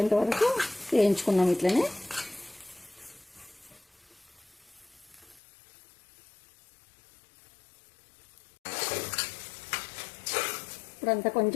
వరకు వేయించుకున్నాం ఇట్లనే. ఇప్పుడంతా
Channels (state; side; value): drops out; right; at 5.4 s